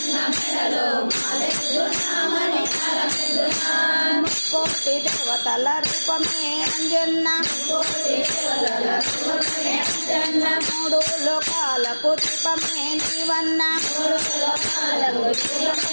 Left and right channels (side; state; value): both; inverted; correlation -1.00